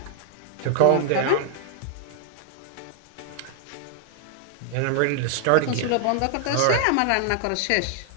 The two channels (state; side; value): different; both; correlation 0.00